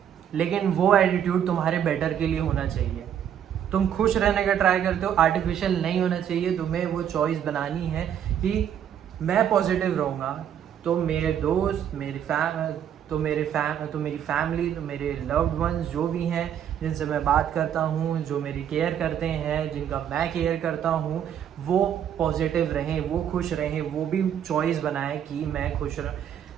लेकिन वो एटीट्यूड तुम्हारे बेटर के लिए होना चाहिए। तुम खुश रहने का ट्राई करते हो, आर्टिफिशियल नहीं होना चाहिए। तुम्हें वो चॉइस बनानी है कि मैं पॉजिटिव रहूँगा, तो मेरे दोस्त, मेरी फैमिली, तो मेरे लव्ड वंस जो भी हैं जिनसे मैं बात करता हूँ, जो मेरी केयर करते हैं, जिनका मैं केयर करता हूँ, वो पॉजिटिव रहें, वो खुश रहें, वो भी चॉइस बनाए कि मैं खुश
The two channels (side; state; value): left; quieter; 9.3 dB